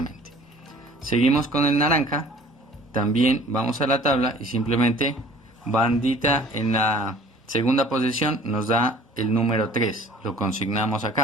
Seguimos con el naranja, también vamos a la tabla y simplemente bandita en la segunda posición nos da el número 3, lo consignamos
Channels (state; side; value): normal; both; correlation 0.49